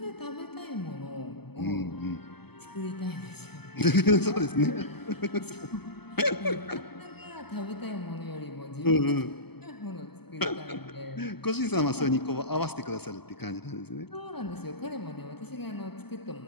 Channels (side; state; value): right; late; 0.97 ms